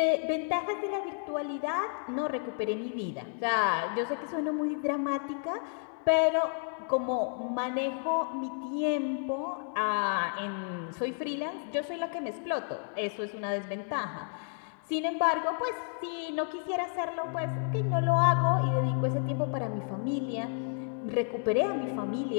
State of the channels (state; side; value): silent; right; 57 dB below the other